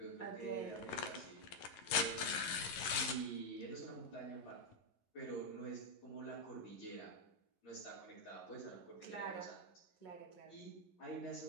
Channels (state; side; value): late; right; 11 ms